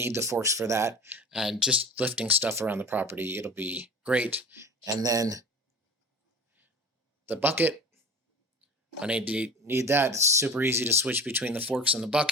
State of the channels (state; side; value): normal; both; correlation 0.37